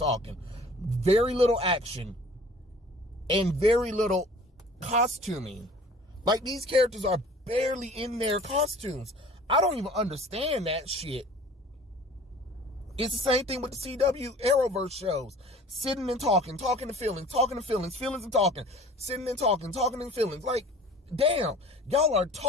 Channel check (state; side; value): normal; both; correlation 0.47